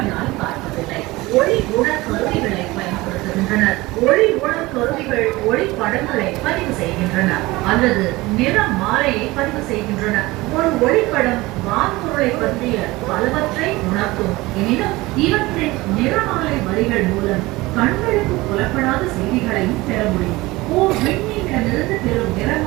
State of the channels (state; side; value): quieter; left; 20.5 dB